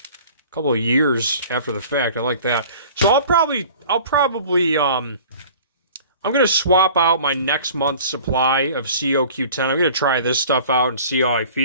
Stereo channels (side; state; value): both; inverted; correlation -0.45